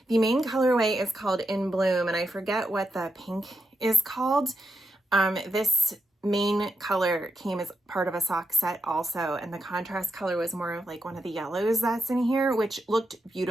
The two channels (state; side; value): normal; both; correlation 0.84